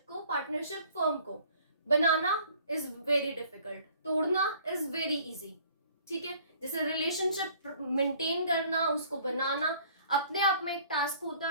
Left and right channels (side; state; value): both; inverted; correlation -0.55